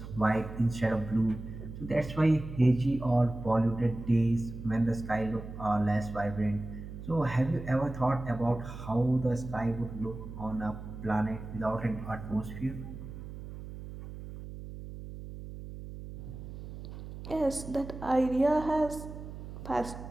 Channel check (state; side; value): noise; right; hum, 11 dB below the sound